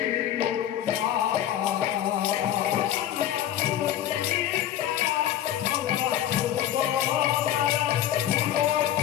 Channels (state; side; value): quieter; right; 11.6 dB